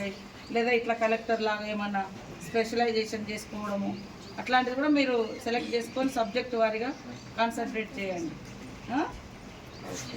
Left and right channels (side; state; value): both; identical; correlation 1.00